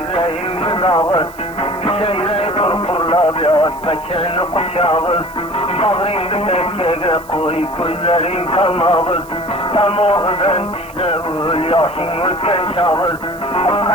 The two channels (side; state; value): right; noise; hiss, 23 dB below the sound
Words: dağır. Şeyreyi kurkurla biraz beçeni kuşağır. Bağrını bekkege koy gözlerin kalmağır. Tamağından dişleğir yaşın ülken çağır.